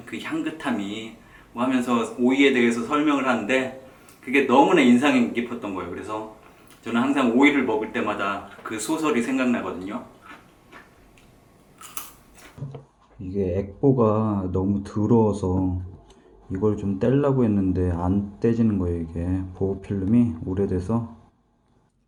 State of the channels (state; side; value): identical; both; correlation 1.00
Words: 그 향긋함이 뭐 하면서 오이에 대해서 설명을 하는데 그게 너무나 인상이 깊었던 거예요. 그래서 저는 항상 오이를 먹을 때마다 그 소설이 생각나거든요. 이게 액보가 너무 더러워서 이걸 좀 떼려고 했는데 안 떼지는 거예요. 이게 보호필름이 오래돼서